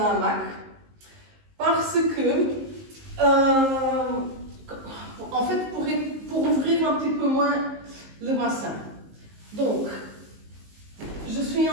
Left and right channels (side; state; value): left; late; 19 ms